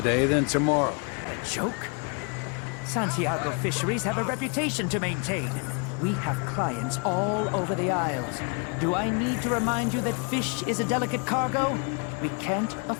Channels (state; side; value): quieter; right; 35.0 dB